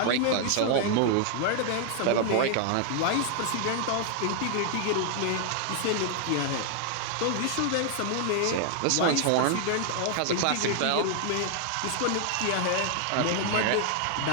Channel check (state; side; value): different; both; correlation 0.00